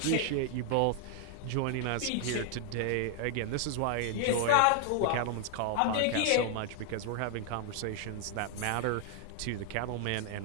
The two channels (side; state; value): both; different; correlation 0.00